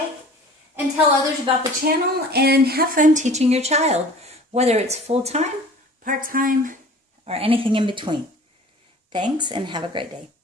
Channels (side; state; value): both; normal; correlation 0.45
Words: and tell others about the channel, and have fun teaching your child, whether it's full-time, part-time, or anything in between. Thanks, and have a great day.